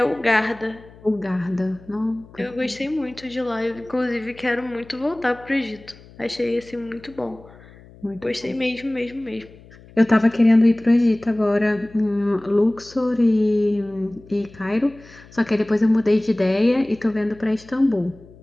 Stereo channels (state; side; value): noise; left; hum, 23 dB below the sound